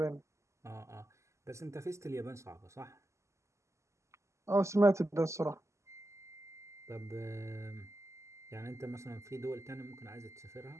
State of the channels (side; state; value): left; late; 0.14 ms